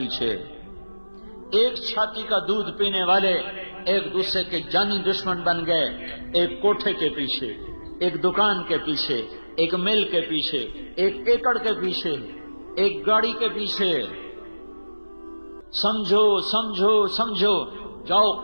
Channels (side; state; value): both; inverted; correlation -1.00